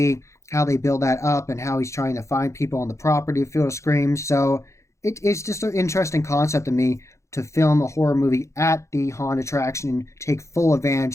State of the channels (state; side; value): late; right; 0.14 ms